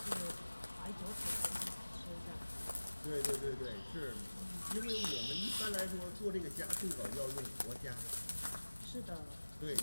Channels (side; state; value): both; inverted; correlation -1.00